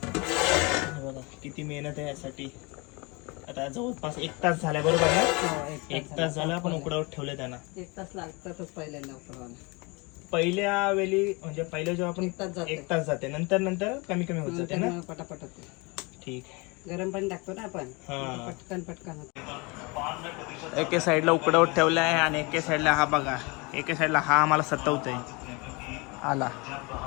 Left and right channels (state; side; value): quieter; right; 27.8 dB